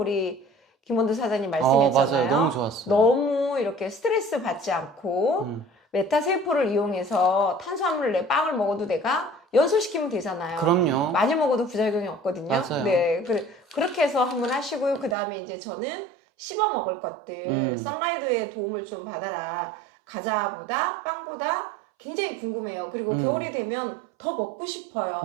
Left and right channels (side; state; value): left; drops out; at 15.2 s